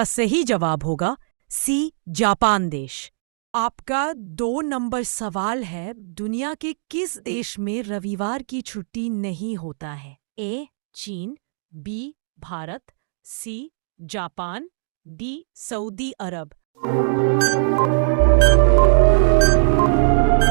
सही जवाब होगा सी. जापान देश। आपका 2 नंबर सवाल है, दुनिया के किस देश में रविवार की छुट्टी नहीं होता है? ए. चीन, B. Bharat, C. Japan, D. सऊदी अरब।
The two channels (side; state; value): left; silent; digital silence